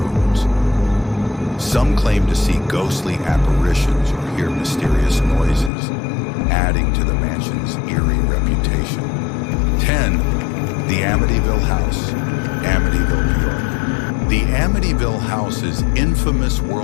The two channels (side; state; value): right; drops out; at 5.7 s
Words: Some claim to see ghostly apparitions or hear mysterious noises, adding to the mansion's eerie reputation. 10. The Amityville House, Amityville, New York. The Amityville House is infamous